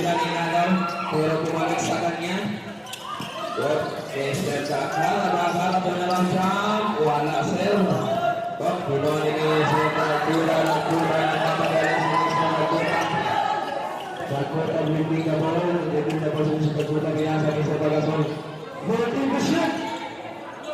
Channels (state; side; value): identical; both; correlation 1.00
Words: inagaw. Pero kumalik sa kanya. Mr. Chakra. Nagkakala po na lang siya. Wala sir. Puno ni Mr. Nagkura. Nagkapagaling si Mr. Nagkura. Nagkura ang bibig na ball. Bibig na ball sa Nagkura. Pinasa ni Mr. Pagasol. Multi to shoot!